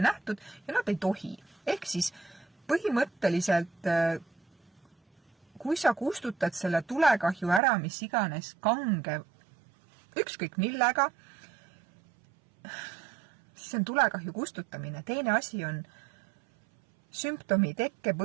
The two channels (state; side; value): drops out; left; at 7.6 s